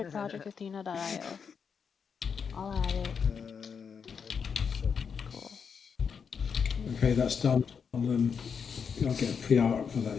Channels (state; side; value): quieter; right; 6.4 dB